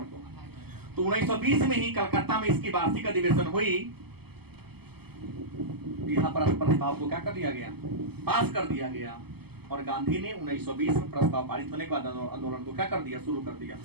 को। तो 1920 में ही कलकत्ता में इसकी वार्षिक अधिवेशन हुई। यहाँ पर प्रस्ताव को क्या कर दिया गया? पास कर दिया गया। और गांधी ने 1920 में प्रस्ताव पारित होने के बाद आंदोलन को क्या कर दिया? शुरू कर दिया।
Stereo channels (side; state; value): left; late; 0.97 ms